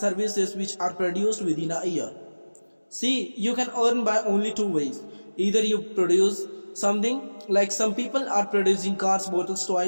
which are produced within a year. See, you can earn by only two ways. Either you produce something, like some people are producing cars, bottles,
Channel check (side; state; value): both; inverted; correlation -1.00